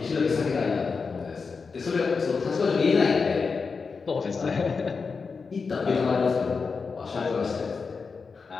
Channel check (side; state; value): right; quieter; 4.9 dB